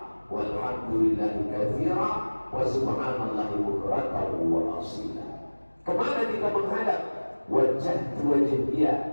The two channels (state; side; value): inverted; both; correlation -1.00